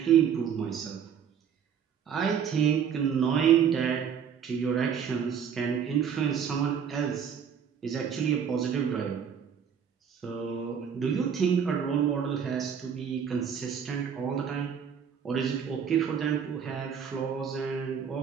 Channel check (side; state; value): left; quieter; 7.7 dB